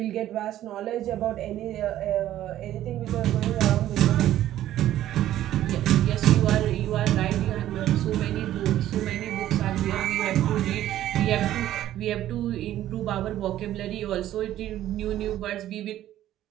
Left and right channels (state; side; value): quieter; left; 12.9 dB